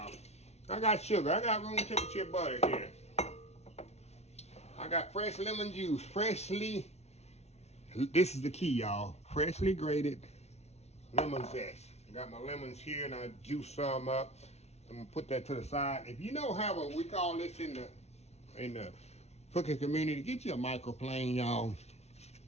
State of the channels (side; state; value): right; late; 0.31 ms